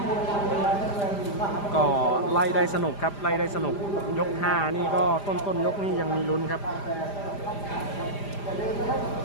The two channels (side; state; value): right; late; 5.0 ms